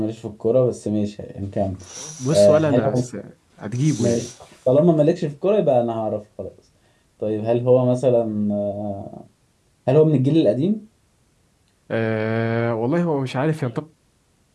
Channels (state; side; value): identical; both; correlation 1.00